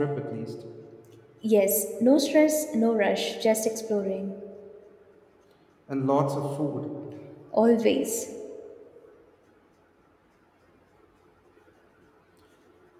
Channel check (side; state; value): both; identical; correlation 1.00